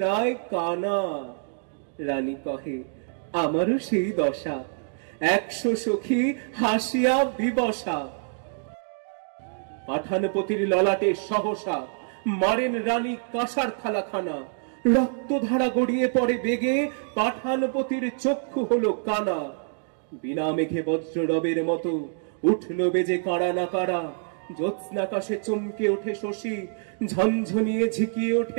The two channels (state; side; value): silent; left; 61 dB below the other